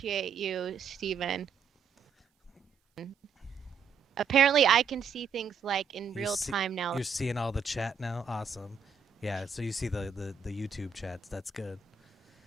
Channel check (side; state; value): left; quieter; 5.9 dB